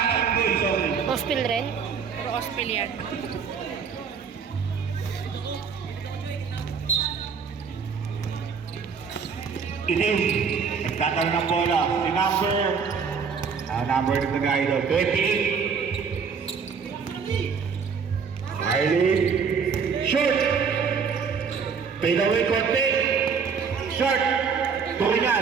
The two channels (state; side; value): quieter; left; 6.0 dB